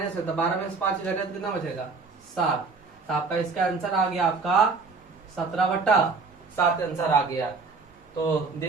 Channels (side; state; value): left; quieter; 4.4 dB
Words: है तो 12 में से 5 जाएगा तो कितना बचेगा 7। तो आपका इसका आंसर आ गया आपका 17/7 आंसर आ गया। तो